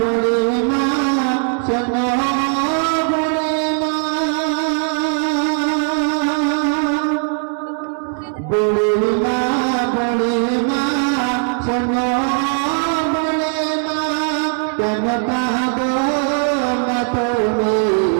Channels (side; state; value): left; silent; 56 dB below the other